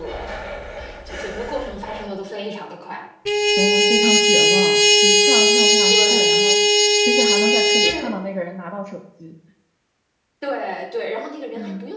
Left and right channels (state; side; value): identical; both; correlation 1.00